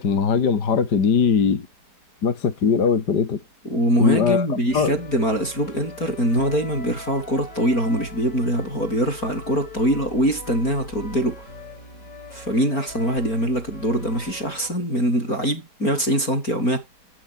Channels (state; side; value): late; right; 4.4 ms